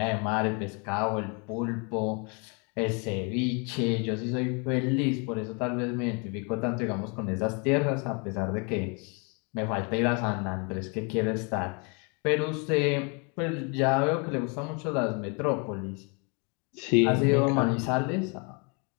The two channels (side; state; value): right; quieter; 33.8 dB